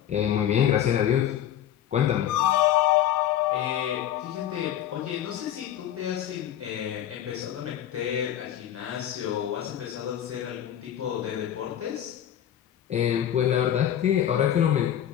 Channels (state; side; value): quieter; right; 10.9 dB